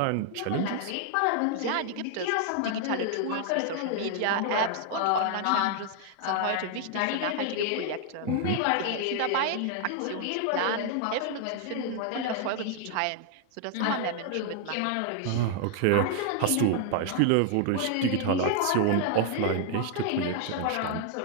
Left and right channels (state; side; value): different; both; correlation 0.00